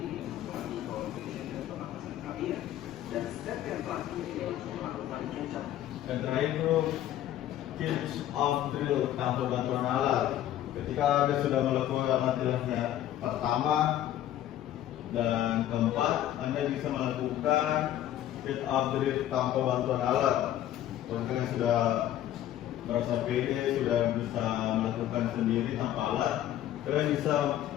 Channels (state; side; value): quieter; right; 12.3 dB